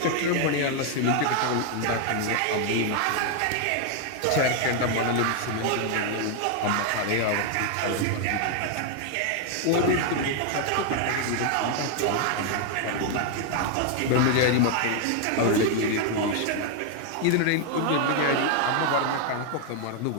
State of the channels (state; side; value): different; both; correlation 0.01